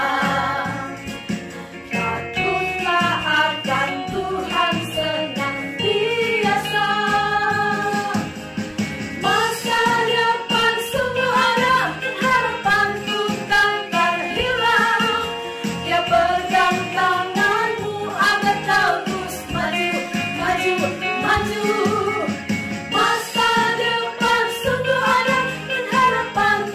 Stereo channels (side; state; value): both; identical; correlation 1.00